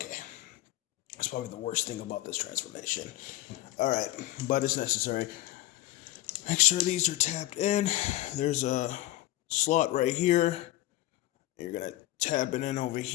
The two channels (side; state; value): right; quieter; 16.1 dB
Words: That's probably the worst thing about this transformation. All right, but it's necessary. Make sure these are tapped in. There's a slot right here. You're gonna tab it in over